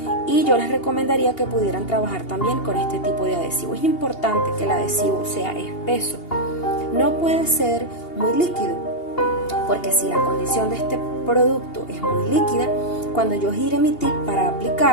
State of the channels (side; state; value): right; late; 2.8 ms